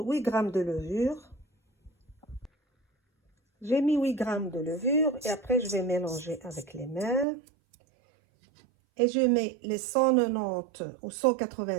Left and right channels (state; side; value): drops out; left; at 7.2 s